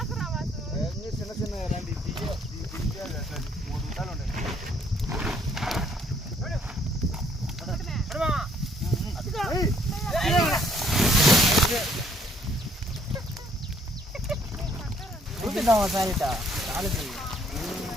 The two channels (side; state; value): both; normal; correlation 0.64